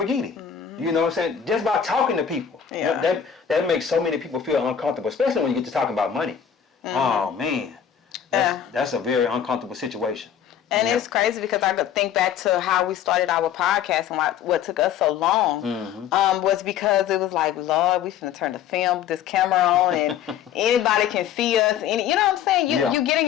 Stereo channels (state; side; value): quieter; right; 8.9 dB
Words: You know what I'm saying? Just by talking to people. Yeah. That makes so many people feel uncomfortable, especially when you get to talking about money. Oh, man. That's a very uncomfortable situation. And it's crazy because I could think back to how we started our podcast and what took us so long was because it was like, Lord, we finna turn this camera on and anybody can see us. And, you know what I'm saying? You get in